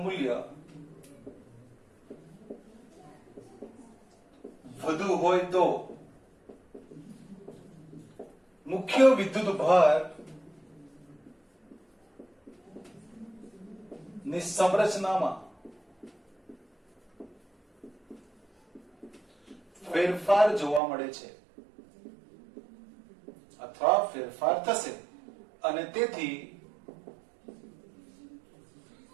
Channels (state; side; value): drops out; left; at 20.8 s